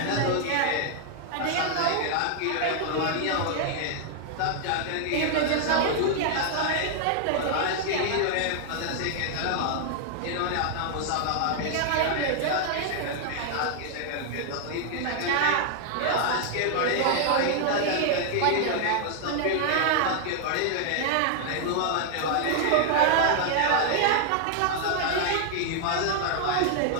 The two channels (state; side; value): different; both; correlation 0.00